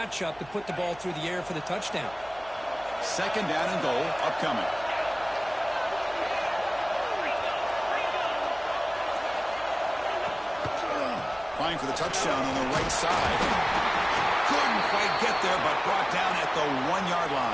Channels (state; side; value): noise; right; hum, 24 dB below the sound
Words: to put the ball through the air for the touchdown. Second down and goal upcoming. Trying for the touchdown on the right side. Couldn't quite get there, but brought down at the 1-yard